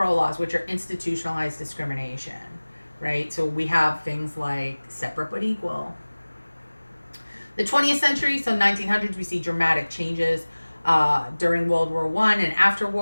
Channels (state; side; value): inverted; both; correlation -1.00